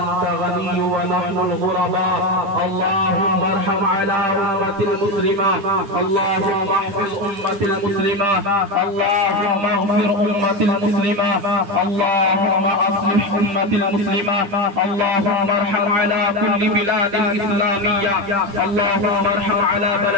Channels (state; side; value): late; left; 10 ms